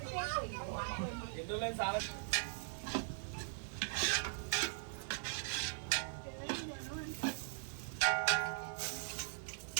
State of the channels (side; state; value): left; silent; 51 dB below the other